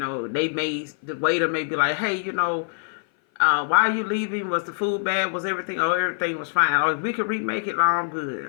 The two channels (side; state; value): right; silent; 57 dB below the other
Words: waiter may be like, hey, why are you leaving? Was the food bad? Was everything? Oh, everything was fine. Oh, if we could remake it, I'm